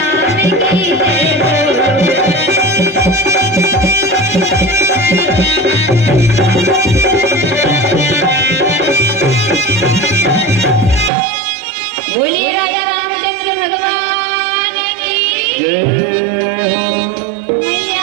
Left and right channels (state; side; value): drops out; left; at 11.1 s